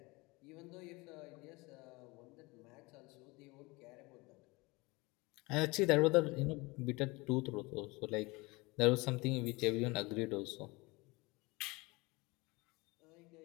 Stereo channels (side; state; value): right; quieter; 24.3 dB